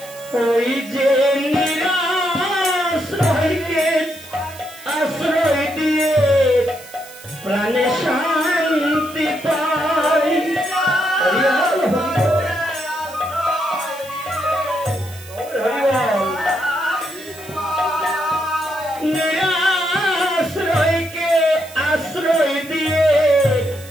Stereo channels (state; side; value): noise; right; hiss, 18 dB below the sound